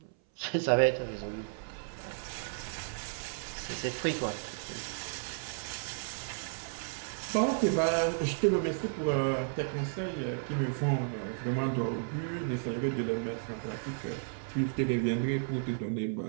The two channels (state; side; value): silent; left; 56 dB below the other